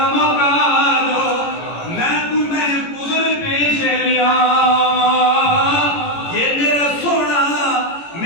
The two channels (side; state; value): right; late; 18 ms